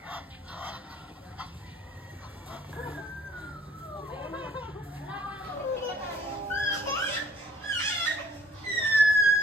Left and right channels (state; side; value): normal; both; correlation 0.58